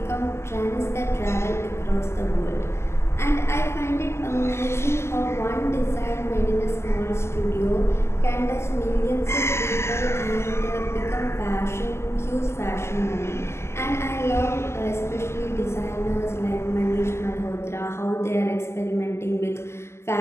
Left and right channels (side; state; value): right; late; 0.13 ms